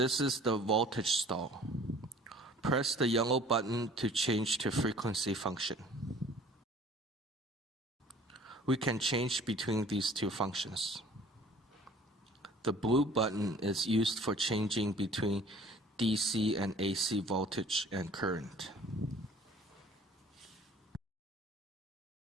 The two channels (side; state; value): both; normal; correlation 0.51